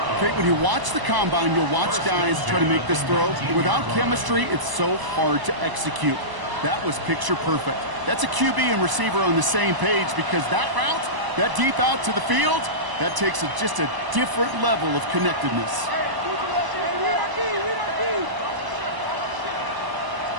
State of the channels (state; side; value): late; left; 1.0 ms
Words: Okay, when you watch the combine, you'll watch guys try to make this throw. Without chemistry, it's so hard to execute. That was picture perfect. That's a QB and receiver on the same page because that route, that deep out to the field, that takes just a different level of connectedness.